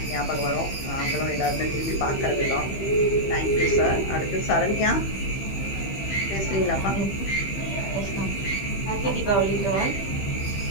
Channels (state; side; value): late; right; 15 ms